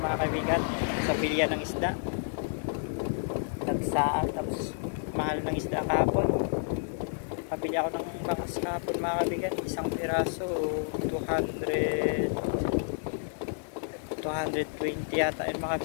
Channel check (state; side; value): silent; right; digital silence